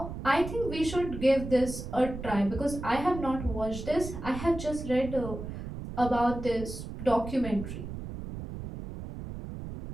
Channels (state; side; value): noise; right; rumble, 8 dB below the sound